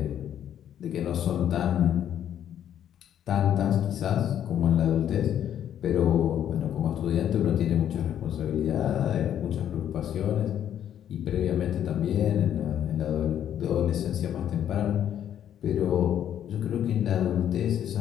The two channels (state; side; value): quieter; right; 10.2 dB